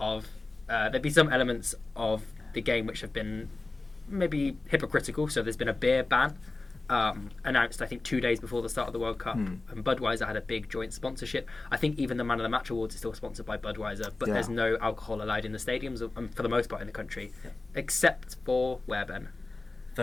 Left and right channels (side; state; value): right; quieter; 3.3 dB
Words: there'd be some elements of the game which have been maybe hypocritical. So there's been a beer ban announced, I think, 2 days before the start of the World Cup, and Budweiser had a big joint sponsorship. I think even the Man of the Match Awards is still sponsored by Budweiser, but there's no alcohol allowed in the stadiums for the most part in the country, except for where, Ben?